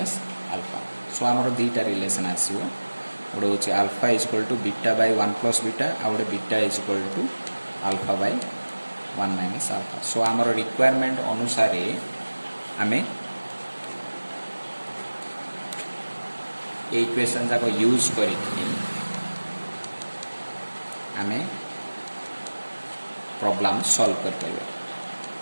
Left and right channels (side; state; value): both; inverted; correlation -1.00